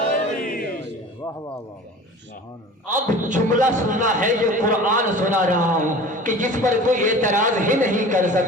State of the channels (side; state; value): both; normal; correlation 0.40